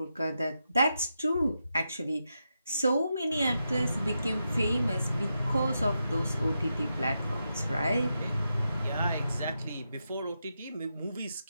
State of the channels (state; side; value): inverted; both; correlation -0.86